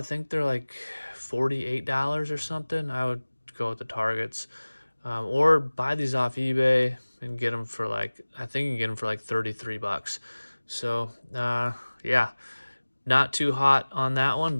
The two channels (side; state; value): both; inverted; correlation -1.00